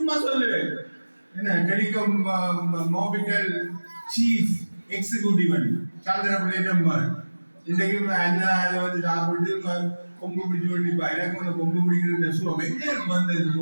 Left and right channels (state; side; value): inverted; both; correlation -1.00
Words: சொல்லுவேன். என்ன telecom Mobitel chief executive சந்திரபிள்ளை number இன்றைக்கு என்ன வந்து சாப்பிட்டு கொம்பு பிடிச்சு கொண்டிருப்பா. எனக்கு வந்து கொம்பு பிடிக்கிற சுவம் எங்கே வந்தது?